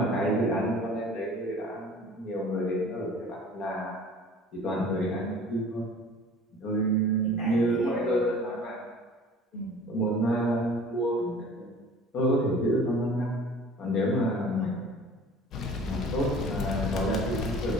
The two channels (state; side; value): normal; both; correlation 0.46